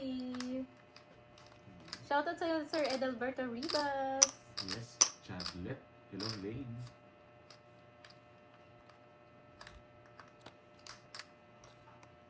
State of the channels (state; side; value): identical; both; correlation 1.00